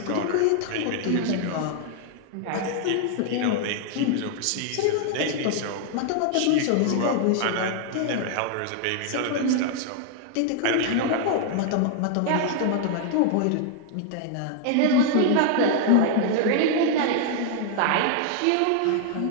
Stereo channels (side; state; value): both; different; correlation 0.00